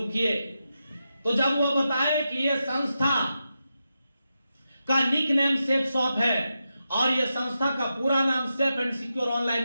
किए, तो जब वो बताए कि ये संस्था का निक नेम सेफ शॉप है, और ये संस्था का पूरा नाम safe and secure online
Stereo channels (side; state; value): both; inverted; correlation -0.88